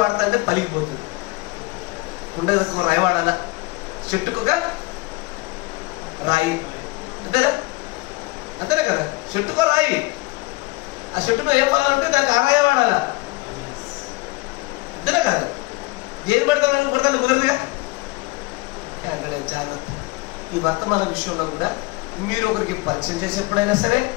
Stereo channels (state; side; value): quieter; right; 23.2 dB